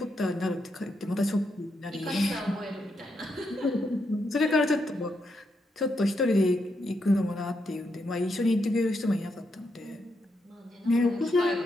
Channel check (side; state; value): both; normal; correlation 0.81